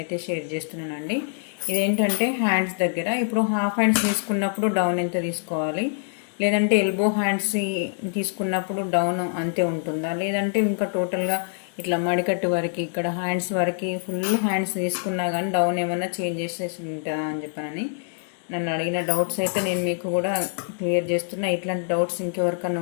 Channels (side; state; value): right; silent; 62 dB below the other